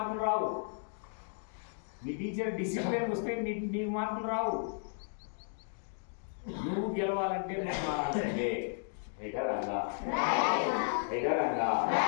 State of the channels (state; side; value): silent; right; digital silence